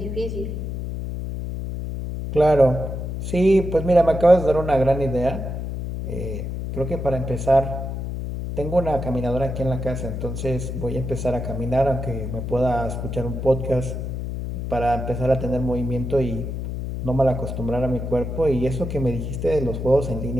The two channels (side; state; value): left; noise; hum, 5 dB below the sound